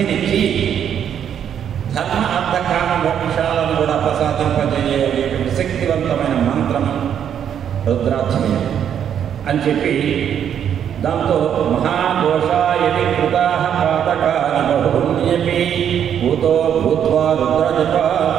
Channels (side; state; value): left; quieter; 9.0 dB